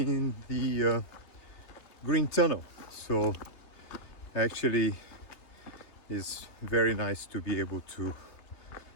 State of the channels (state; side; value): late; right; 3.3 ms